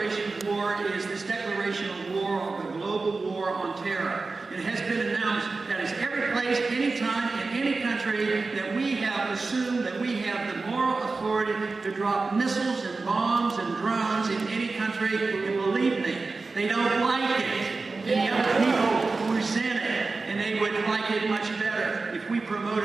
of war is this declaration of war, the global war on terror. It has been announced that is every place, anytime, in any country that we have assumed that we have the moral authority to drop missiles and bombs and drones in any country. And believe me, they don't like it. And the other people resent it. And they would like it much better if we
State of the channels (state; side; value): quieter; left; 3.8 dB